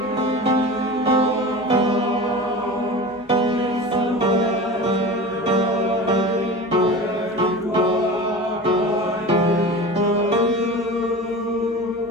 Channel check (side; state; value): both; normal; correlation 0.32